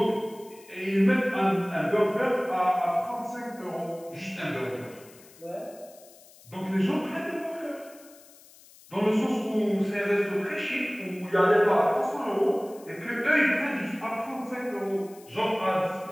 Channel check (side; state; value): left; noise; hiss, 24 dB below the sound